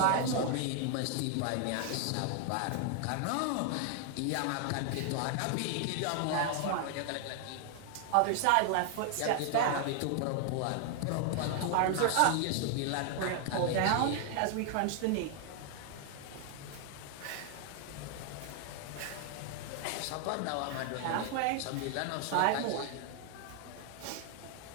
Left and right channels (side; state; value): both; different; correlation 0.00